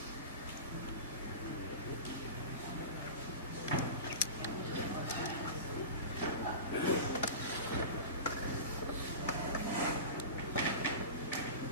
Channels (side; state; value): both; inverted; correlation -0.30